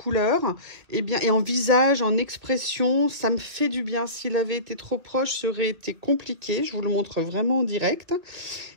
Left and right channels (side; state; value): left; late; 2.0 ms